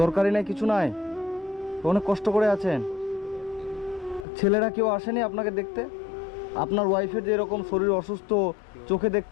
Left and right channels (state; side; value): drops out; right; at 4.2 s